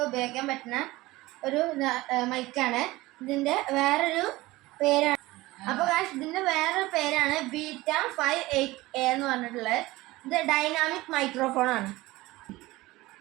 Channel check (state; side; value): quieter; left; 19.3 dB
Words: ഉപയോഗിക്കാൻ പറ്റുന്ന ഒരു മൈക്കാണ്. ഇതിൻ്റെ വേറൊരു പേരാണ്. അപ്പോൾ ഗായ്സ്, ഇതിൻ്റെ വേറൊരു പേരാണ് ബീറ്റ 58A എന്ന് പറഞ്ഞിട്ടുള്ളത്. ഇത് ഡൈനാമിക് മൈക്രോഫോൺ ആണ്.